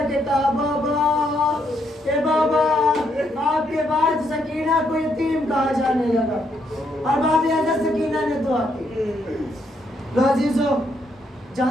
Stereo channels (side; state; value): both; normal; correlation 0.75